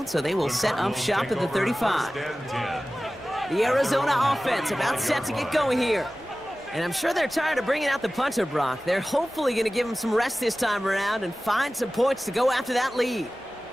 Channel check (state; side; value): noise; right; hum, 30 dB below the sound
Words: so they will set up shop at the 35. The Arizona offense about set to get going here. And I'm sure they're tired of bringing out the punter, Brock. They're hopefully going to give him some rest this time around and find some points to go after that lead.